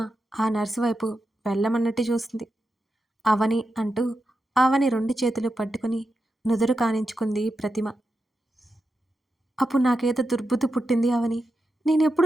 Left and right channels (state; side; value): normal; both; correlation 0.88